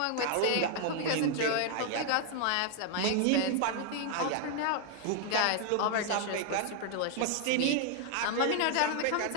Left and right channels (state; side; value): different; both; correlation 0.00